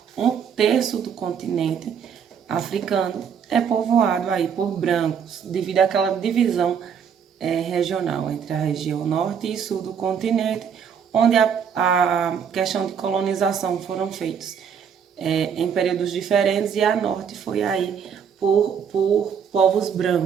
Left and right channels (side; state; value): left; quieter; 7.4 dB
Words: um terço do continente africano é povoado aí por brancos, devido àquela divisão regional entre a região norte e sul do continente, onde a questão de colonização foram feitos em períodos diferentes e a norte foi aí por povos